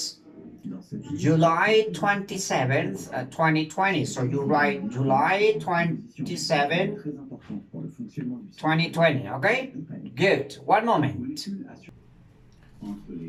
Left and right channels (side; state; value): both; identical; correlation 1.00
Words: July 27th, 2020. So you write July 27th, 2020. Okay? Good. One moment.